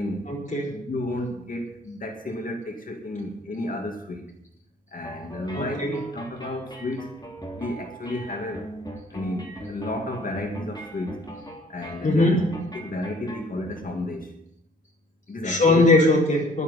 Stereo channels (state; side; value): normal; both; correlation 0.57